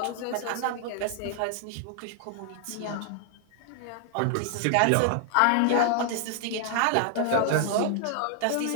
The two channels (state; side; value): different; both; correlation 0.00